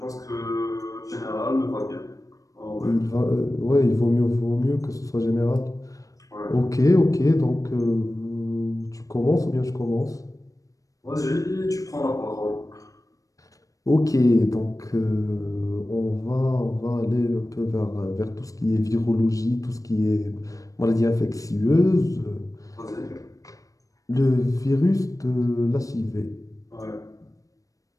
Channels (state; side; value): late; right; 0.16 ms